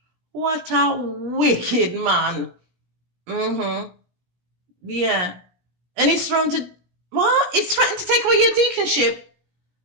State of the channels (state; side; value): late; left; 17 ms